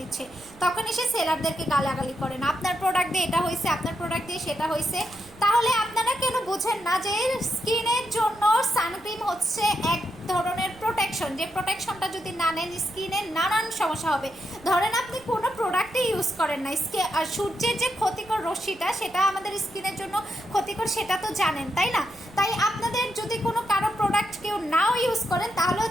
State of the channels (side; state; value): right; noise; rumble, 24 dB below the sound